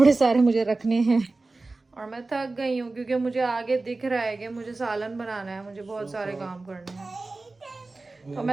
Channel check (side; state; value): left; quieter; 3.4 dB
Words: सारे मुझे रखने हैं और मैं थक गई हूँ क्योंकि मुझे आगे दिख रहा है कि मुझे सालन बनाना है, मुझे बहुत सारे काम करने हैं। तो